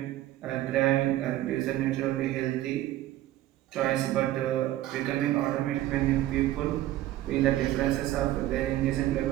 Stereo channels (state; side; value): quieter; left; 14.6 dB